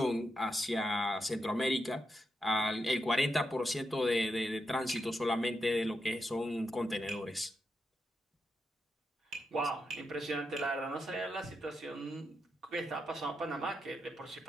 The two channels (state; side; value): normal; both; correlation 0.85